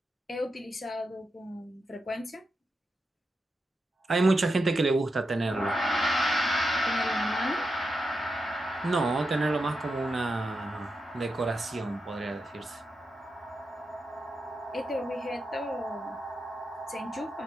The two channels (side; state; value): both; normal; correlation 0.87